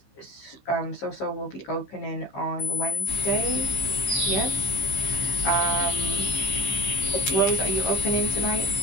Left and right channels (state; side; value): late; right; 15 ms